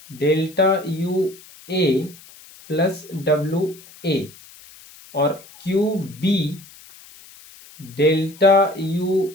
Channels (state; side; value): noise; left; hiss, 22 dB below the sound